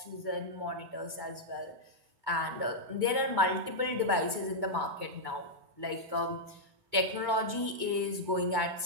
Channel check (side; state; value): left; late; 2.3 ms